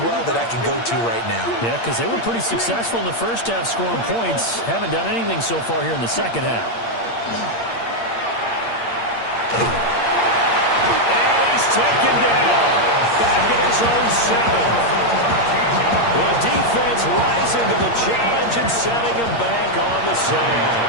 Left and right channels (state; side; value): late; right; 8.7 ms